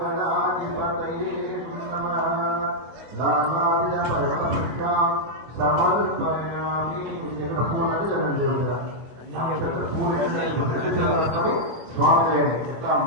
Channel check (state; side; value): late; left; 25 ms